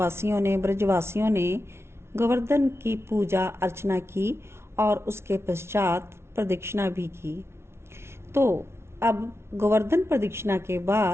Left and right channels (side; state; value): left; late; 0.12 ms